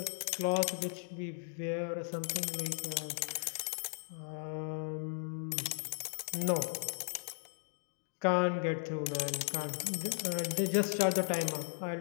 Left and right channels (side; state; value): right; silent; digital silence